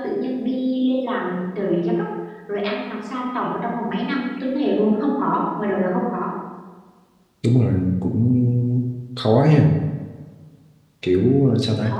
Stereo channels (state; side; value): identical; both; correlation 1.00